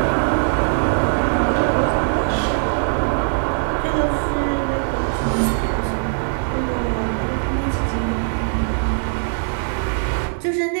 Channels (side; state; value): left; silent; 65 dB below the other